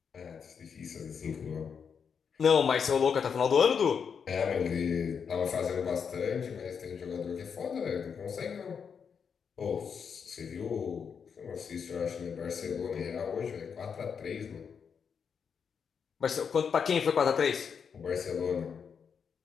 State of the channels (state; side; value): quieter; right; 6.6 dB